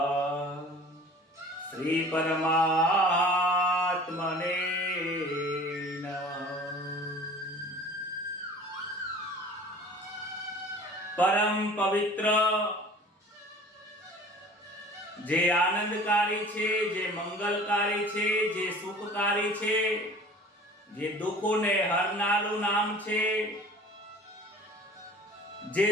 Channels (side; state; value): both; normal; correlation 0.45